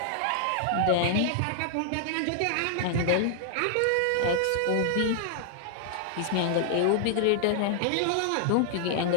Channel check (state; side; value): different; both; correlation 0.00